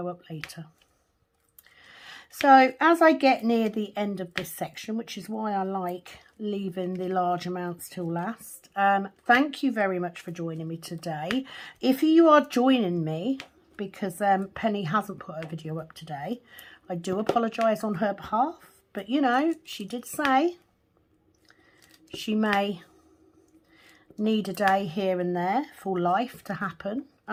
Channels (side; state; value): both; identical; correlation 1.00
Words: up later. So as I get near the end of this section, which is why I like leaving the large amounts till last, thank you very much for joining me today. If you are joining me because Penny hasn't put her video up today, I do apologise on her behalf, but you know, she did say she may need a day here and there for life to happen,